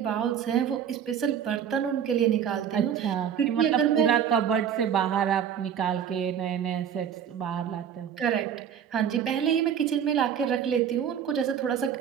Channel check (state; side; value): quieter; left; 8.6 dB